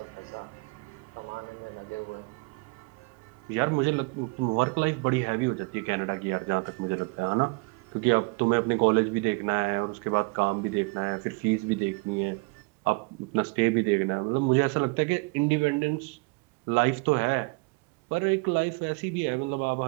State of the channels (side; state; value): left; quieter; 28.8 dB